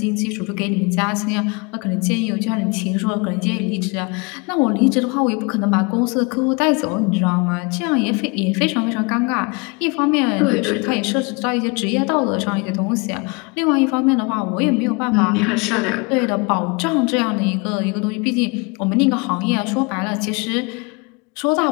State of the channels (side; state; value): right; quieter; 29.7 dB